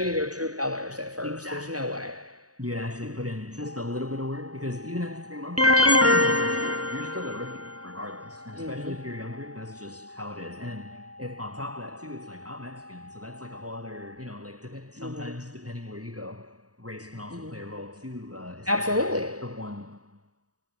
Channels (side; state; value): left; late; 0.67 ms